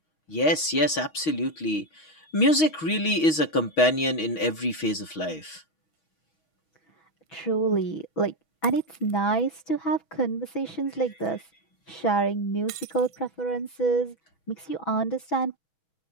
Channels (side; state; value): right; late; 6.3 ms